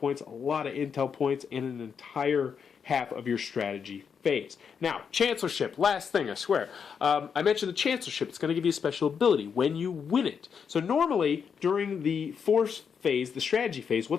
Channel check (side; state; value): right; quieter; 6.7 dB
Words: a lot of intel points, and an entire half of your strategy phase. Now, Chancellorship, last thing, I swear. I mentioned the Chancellorship. It's going to give you a special ability when you win it. So normally, during the force phase, the strategy phase,